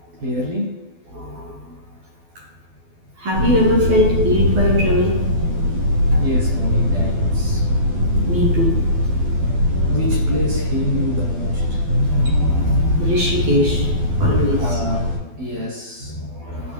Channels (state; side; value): late; left; 12 ms